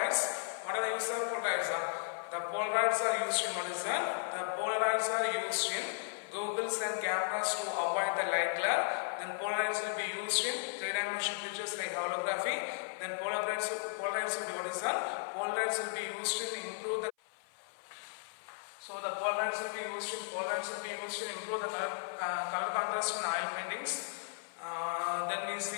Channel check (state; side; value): silent; right; 54 dB below the other